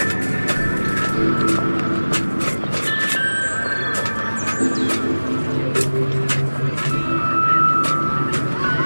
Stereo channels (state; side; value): inverted; both; correlation -1.00